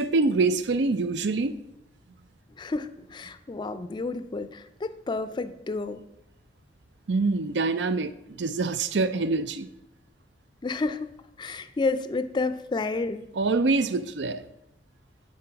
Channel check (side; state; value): both; normal; correlation 0.32